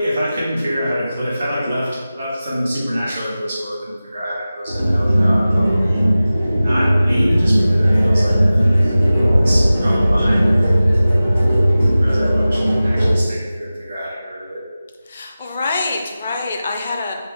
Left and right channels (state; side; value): inverted; both; correlation -0.96